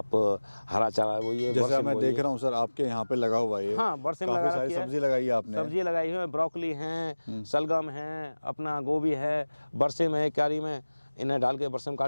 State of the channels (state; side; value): inverted; both; correlation -1.00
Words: हरा चारा वो ये जैसे मैं देख रहा हूँ सर आपके यहाँ पे लगा हुआ है, हाँ, बरसिम काफी लगा सारी रखी है। सब्जी लगाई है आपने? सब्जी लगाई है, ब्रोकली हैं, सलगम है, अपना गोभी है, बरसिम है, क्यारी में इन्हें डाल के बरसिम